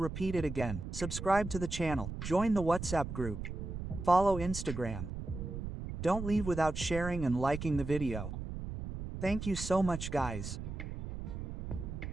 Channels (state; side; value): noise; right; rumble, 7 dB below the sound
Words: it again. Subscribe to the channel, join the WhatsApp group, follow Instagram. Don't leave without sharing and liking the video. Thank you so much guys.